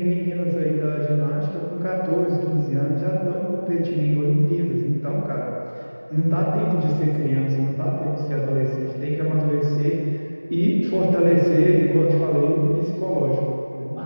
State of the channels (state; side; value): inverted; both; correlation -1.00